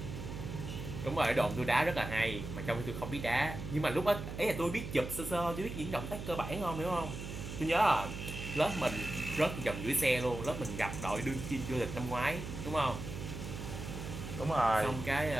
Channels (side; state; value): right; noise; hum, 8 dB below the sound